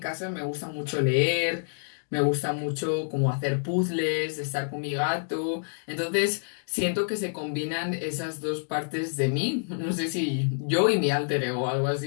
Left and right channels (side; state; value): right; silent; digital silence